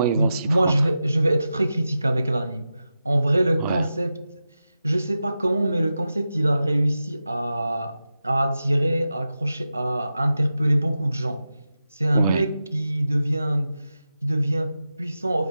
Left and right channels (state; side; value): inverted; both; correlation -0.91